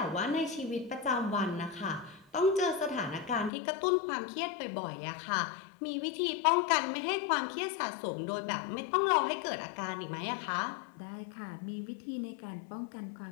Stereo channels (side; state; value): right; drops out; at 3.5 s